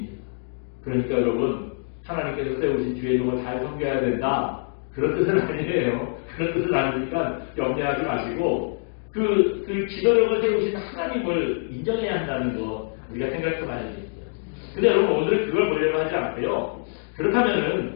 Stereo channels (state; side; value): silent; right; digital silence